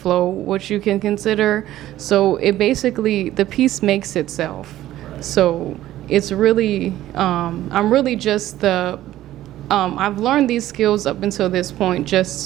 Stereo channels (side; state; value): left; quieter; 14.1 dB